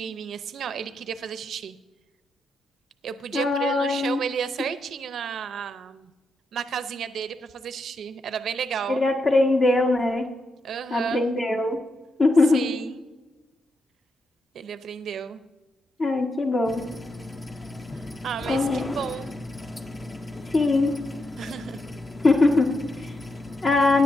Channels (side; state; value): both; normal; correlation 0.83